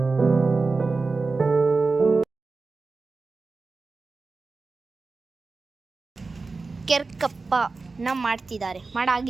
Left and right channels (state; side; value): quieter; left; 4.0 dB